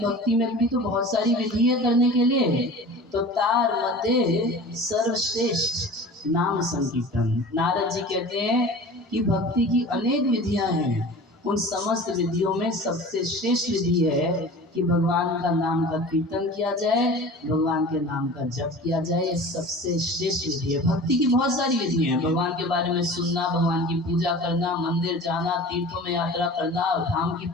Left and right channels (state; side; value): normal; both; correlation 0.39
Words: में भी तो बहुत सारी विधि है करने के लिए। तो तार मध्य सर्वश्रेष्ठ नाम संकीर्तन। नारद जी कहते हैं कि भक्ति की अनेक विधियां हैं, उन समस्त विधियों में सबसे श्रेष्ठ विधि है कि भगवान का नाम का कीर्तन किया जाए, भगवान के नाम का जप किया जाए। ये सबसे श्रेष्ठ विधि है। भक्ति की बहुत सारी विधि हैं, भगवान के बारे में सुनना, भगवान की पूजा करना, मंदिर जाना, तीर्थों में यात्रा करना, धाम की